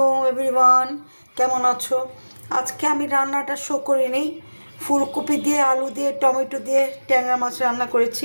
এভরিওয়ান, কেমন আছো? আজকে আমি রান্নাটা শো করিনি। ফুলকপি দিয়ে, আলু দিয়ে, টমেটো দিয়ে ট্যাংরা মাছ রান্না করেছি,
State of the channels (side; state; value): both; inverted; correlation -1.00